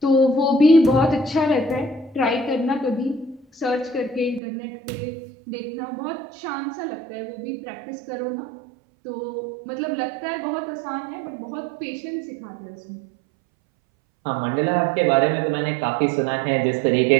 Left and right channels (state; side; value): drops out; left; at 4.4 s